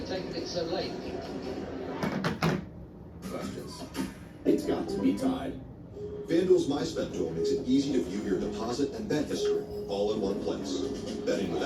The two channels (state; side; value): identical; both; correlation 1.00